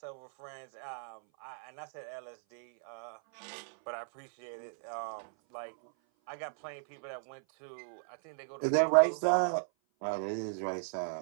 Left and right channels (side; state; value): left; silent; 54 dB below the other